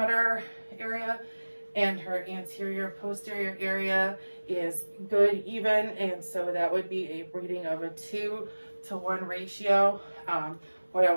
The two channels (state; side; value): inverted; both; correlation -1.00